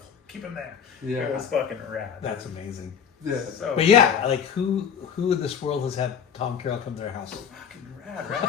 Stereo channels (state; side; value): quieter; right; 7.6 dB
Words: keep him there. Yeah. It was fucking rad. That's amazing. Yeah. So But like who in this world has had Tom Carroll come to their house? fucking rad, right?